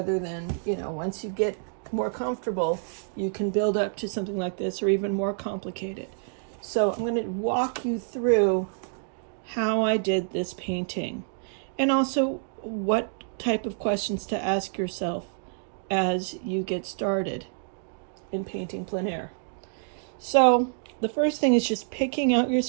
than, once you get more comfortable, you can build up to something like this or even more complicated. So I'm going to walk you through how I did this painting, and also what type of questions to ask yourself as you get started in painting plein air. So the first thing is just picking out your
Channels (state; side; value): silent; left; digital silence